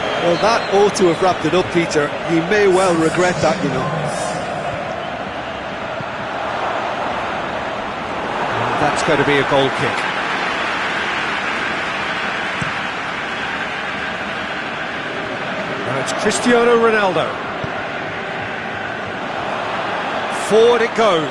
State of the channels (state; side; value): identical; both; correlation 1.00